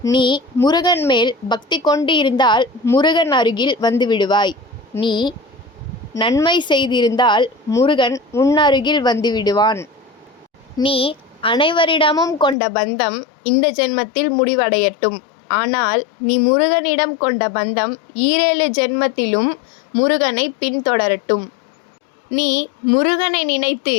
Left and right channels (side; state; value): right; drops out; at 12.6 s